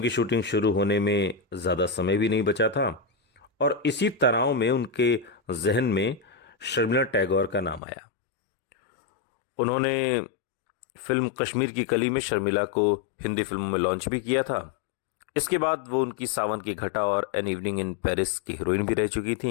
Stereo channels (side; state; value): right; drops out; at 7.8 s